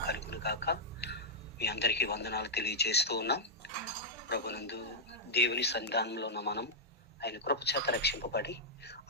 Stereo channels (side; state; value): both; normal; correlation -0.07